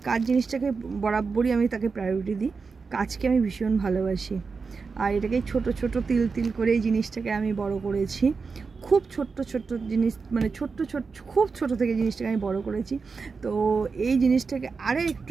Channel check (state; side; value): quieter; left; 4.8 dB